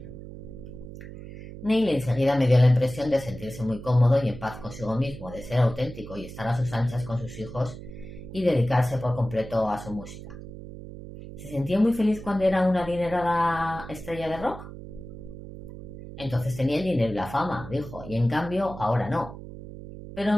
Neil enseguida me dio la impresión de sentirse muy cómodo y en paz consigo mismo, de ser auténtico y estar a sus anchas con sus hijos y dedicarse por completo a su música. ¿Se sentía muy feliz cuando era una adinerada estrella de rock? Entonces tenía el dinero y la fama, dijo, y en cambio ahora no.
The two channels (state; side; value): noise; right; hum, 13 dB below the sound